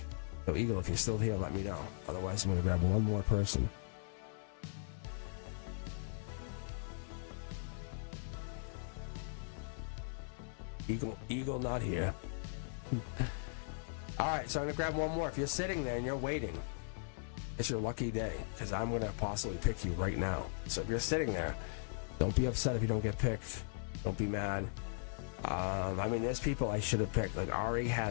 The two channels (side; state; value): right; silent; 52 dB below the other